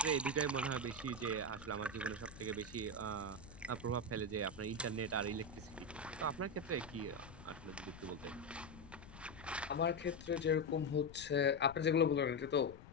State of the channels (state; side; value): noise; left; rumble, 17 dB below the sound